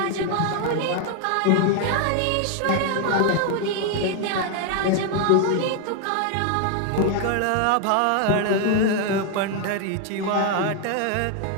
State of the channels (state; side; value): different; both; correlation 0.01